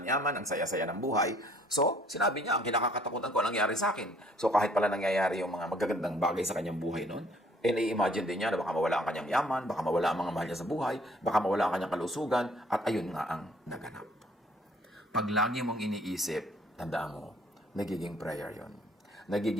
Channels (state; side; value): normal; both; correlation 0.60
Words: ang saya-saya ng buhay. So, sinabi niya, ang kinakatakutan ko ang nangyari sa akin. So, kahit pala nangyayari yung mga magagandang bagay sa kanyang buhay noon, i-imagine din niya na baka mawala ang kanyang yaman, baka mawala ang mga mahal niya sa buhay, baka mawala ang kanyang kalusugan, at ayun nga ang naganap. Pag lagi mong iniisip, tandaan mo, nagiging prayer yon,